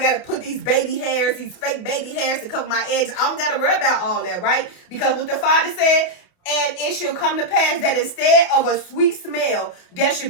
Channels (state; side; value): late; right; 28 ms